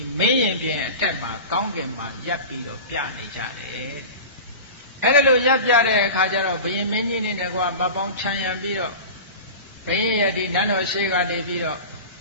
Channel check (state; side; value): inverted; both; correlation -0.32